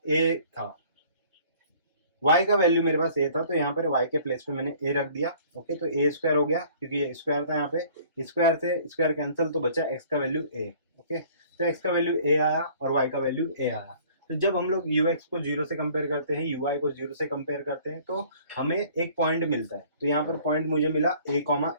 था, y का वैल्यू मेरे पास a था, तो यहाँ पर y के प्लेस पे मैंने a रख दिया। ओके, तो a स्क्वायर हो गया, क्योंकि ये स्क्वायर था, यहाँ पे स्क्वायर से स्क्वायर कैंसिल, तो बचा x का वैल्यू a। ओके, तो x का वैल्यू a आया और y का वैल्यू a आया। तो जब हम लोग ux को 0 से कंपेयर करते हैं, uy को 0 से कंपेयर करते हैं, तो हमें एक पॉइंट मिलता है। तो यहाँ पर पॉइंट मुझे मिला a,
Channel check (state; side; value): inverted; both; correlation -0.53